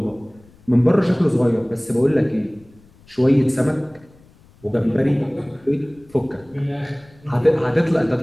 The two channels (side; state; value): left; noise; rumble, 28 dB below the sound